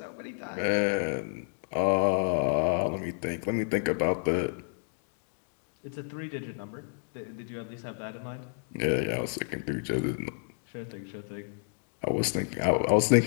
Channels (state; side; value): silent; right; digital silence